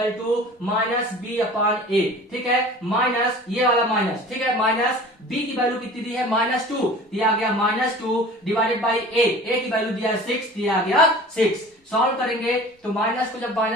to -b/a, ठीक है। माइनस ये वाला माइनस, ठीक है, माइनस b की वैल्यू कितनी दी है -2, दिया गया -2 डिवाइडेड बाई a की वैल्यू दिया है 6, दिया गया 6। सॉल्व करेंगे तो माइनस को जब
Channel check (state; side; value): normal; both; correlation 0.43